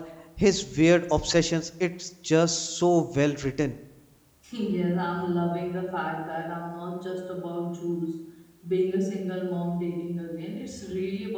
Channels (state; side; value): identical; both; correlation 1.00